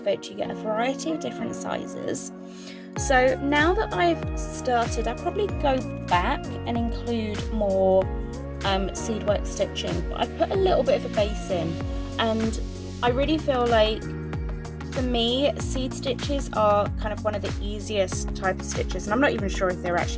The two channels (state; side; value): identical; both; correlation 1.00